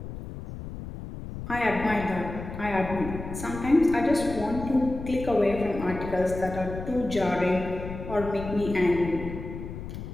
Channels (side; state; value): left; noise; rumble, 9 dB below the sound